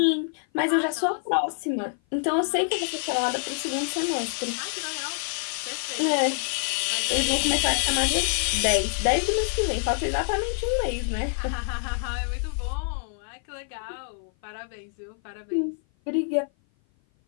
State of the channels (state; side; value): silent; right; 55 dB below the other